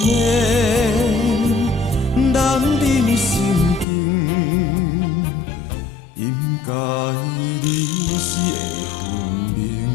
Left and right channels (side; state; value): right; drops out; at 3.9 s